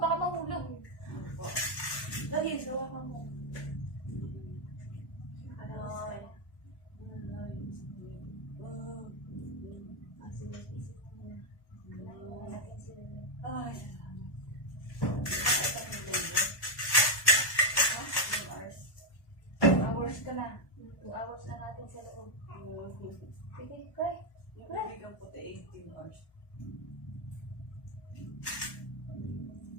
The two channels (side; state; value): right; late; 1.1 ms